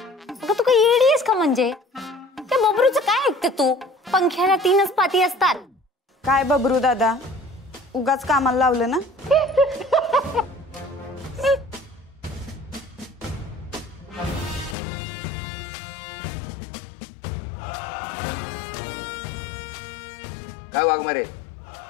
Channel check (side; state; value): right; drops out; at 14.8 s